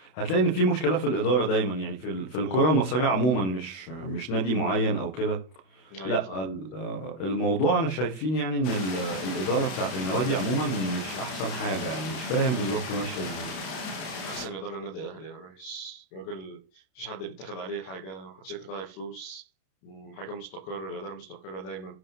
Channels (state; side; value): late; right; 32 ms